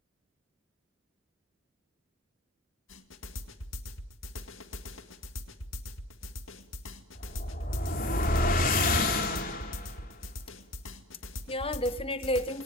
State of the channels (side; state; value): both; normal; correlation 0.39